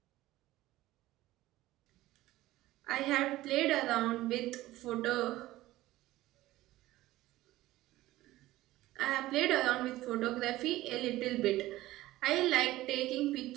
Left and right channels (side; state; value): left; quieter; 16.6 dB